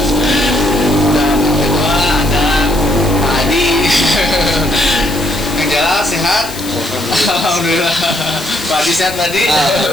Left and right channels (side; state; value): left; noise; hiss, 12 dB below the sound